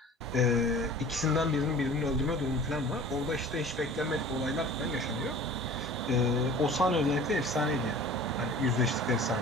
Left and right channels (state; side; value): normal; both; correlation 0.43